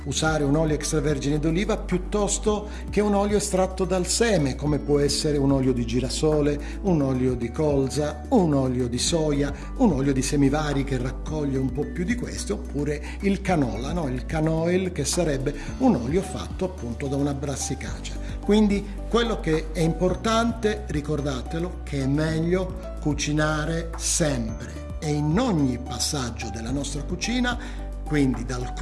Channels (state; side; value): identical; both; correlation 1.00